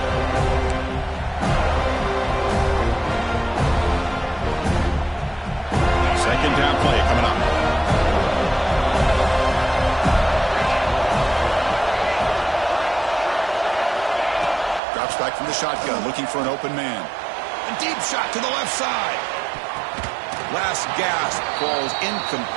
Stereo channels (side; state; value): left; drops out; at 14.8 s